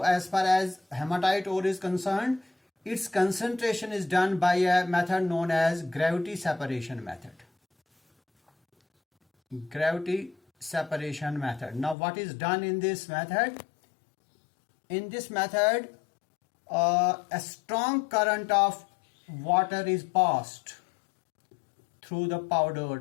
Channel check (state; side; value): drops out; right; at 12.0 s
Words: as far as hematite ore is concerned, its concentration is done by a method known as gravity separation method. Gravity separation method. Now, what is done in this method? In this method, a strong current of water is passed through the